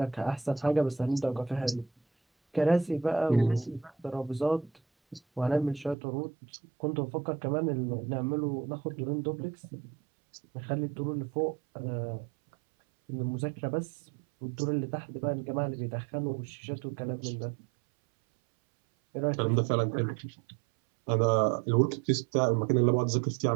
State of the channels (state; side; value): drops out; left; at 6.0 s